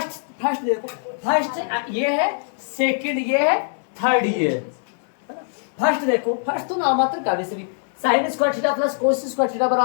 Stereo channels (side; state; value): right; silent; digital silence